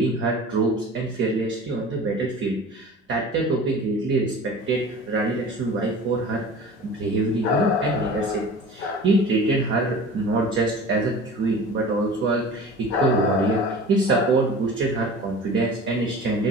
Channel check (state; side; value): normal; both; correlation 0.39